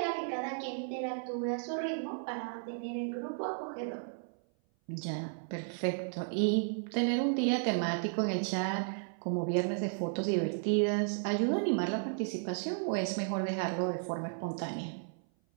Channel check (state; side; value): silent; left; 55 dB below the other